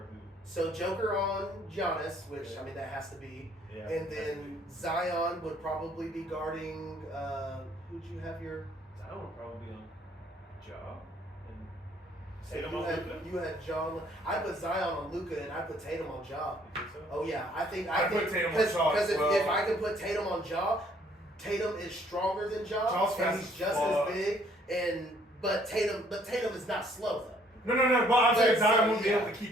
who? So Joker on Giannis, which I mean that has to be, and then Zion would probably be guarding. Who'd you have your? Zion would probably be on Ja. You had John. I put Zion on Luka, and I put Tatum on Ja. You think so? Oh yeah, I think put Tatum on Ja. Because if I can put Tatum on Ja, Tatum is stronger than Ja, and he's just as big. But Tatum is not slow though. No. But I'm saying Zion won't be able to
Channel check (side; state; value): both; normal; correlation 0.62